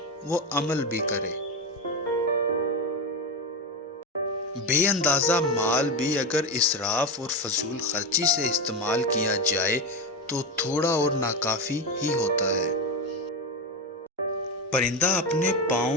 وہ عمل بھی کرے۔ بے اندازہ مال بھی اگر اسراف اور فضول خرچی سے استعمال کیا جائے تو تھوڑا اور ناکافی ہی ہوتا ہے۔ پرندہ اپنے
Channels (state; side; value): normal; both; correlation 0.16